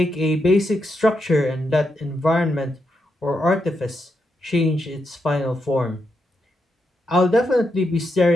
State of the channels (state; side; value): normal; both; correlation 0.83